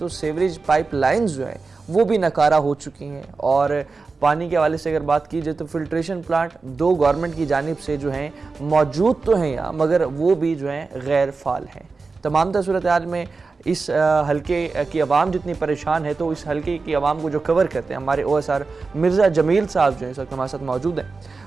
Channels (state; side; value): quieter; left; 4.2 dB